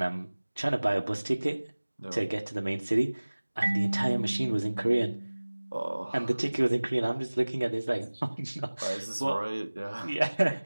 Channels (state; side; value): inverted; both; correlation -1.00